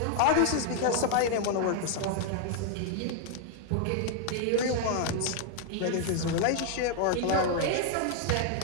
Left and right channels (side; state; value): both; different; correlation 0.00